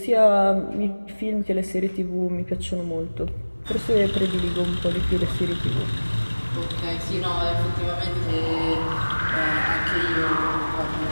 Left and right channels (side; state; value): both; inverted; correlation -1.00